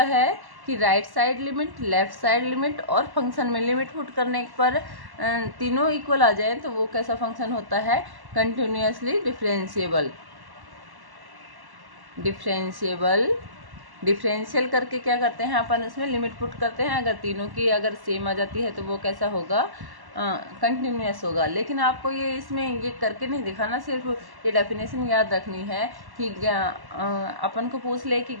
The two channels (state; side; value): late; left; 1.1 ms